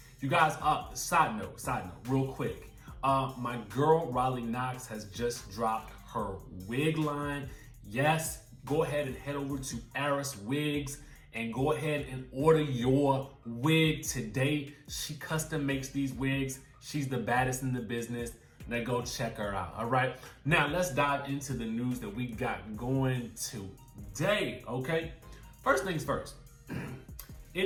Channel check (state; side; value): identical; both; correlation 1.00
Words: you guys, side note, real quick. My girl, Riley Knox, has just dropped her wig line. Yes, go ahead and head over to Aris Wigs and go ahead and order your wig today. She custom makes these wigs. She's the baddest in the business. Now go check her out, all right? Now let's dive into the news that we got going today, okay? First things first, it